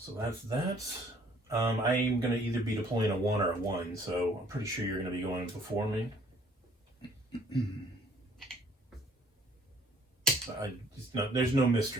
that's that. I'm going to either be deploying a 1 or a 1, so I'm pretty sure you're going to be going before me. There's no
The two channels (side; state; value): both; normal; correlation 0.60